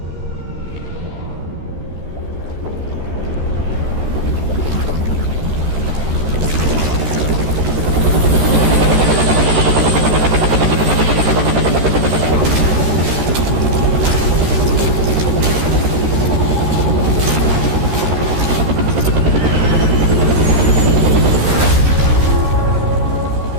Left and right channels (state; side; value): late; left; 13 ms